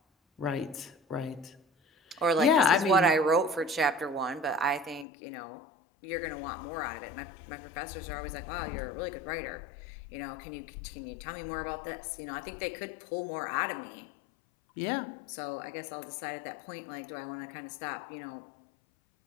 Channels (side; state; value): right; drops out; at 5.1 s